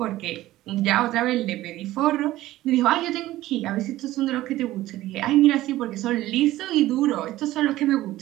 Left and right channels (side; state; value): left; quieter; 15.8 dB